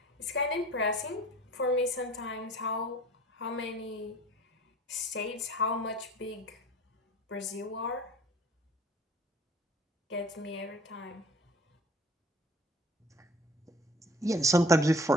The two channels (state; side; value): normal; both; correlation 0.48